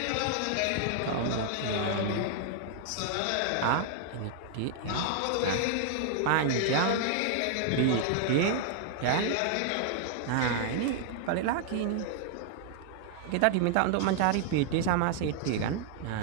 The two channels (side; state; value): both; different; correlation -0.01